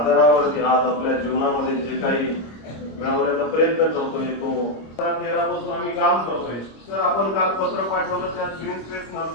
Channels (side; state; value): right; late; 26 ms